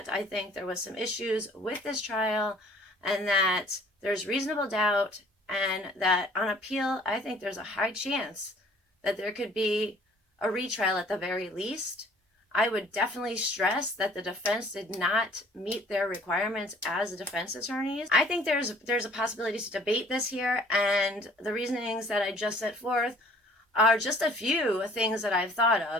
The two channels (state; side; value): normal; both; correlation 0.54